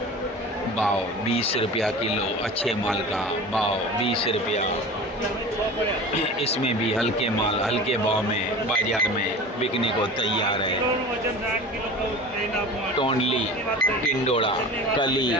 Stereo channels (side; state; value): both; normal; correlation 0.36